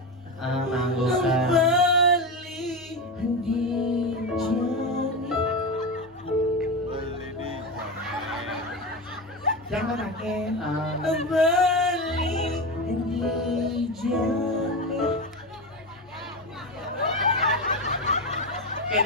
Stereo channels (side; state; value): both; normal; correlation 0.18